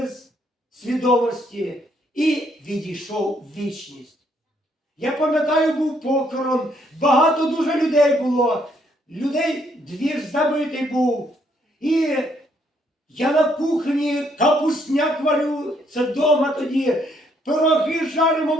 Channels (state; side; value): normal; both; correlation 0.70